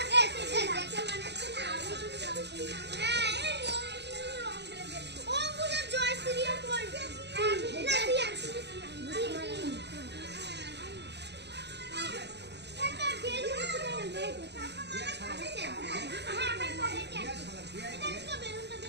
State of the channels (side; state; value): left; late; 0.50 ms